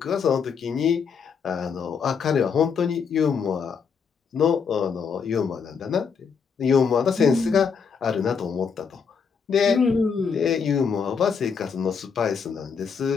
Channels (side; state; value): right; quieter; 6.1 dB